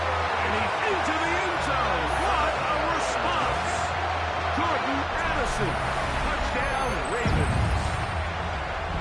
And he's into the end zone. What a response. Jordan Addison. Touchdown, Ravens.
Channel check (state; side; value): identical; both; correlation 1.00